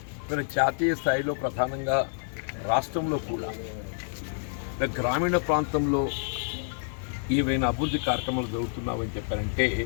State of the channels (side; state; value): right; silent; digital silence